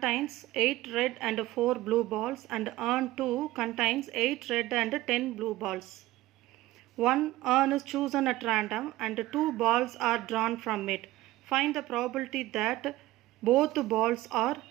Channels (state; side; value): quieter; left; 17.2 dB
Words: 8 red and 4 blue balls, and urn 2 contains 8 red and 10 blue balls. One urn is chosen at random and 2 balls are drawn from it. Find the probability that both balls are